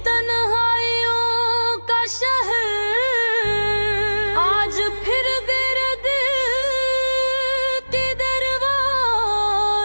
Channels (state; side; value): inverted; both; correlation -1.00